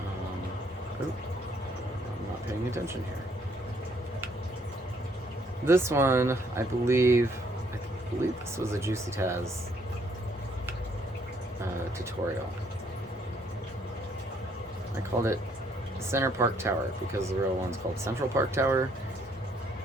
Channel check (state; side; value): normal; both; correlation 0.67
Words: I'm not paying attention here. This one, I believe this was a Juicy Taz tutorial. I called it Center Park Tower because the real one's called Central Park Tower.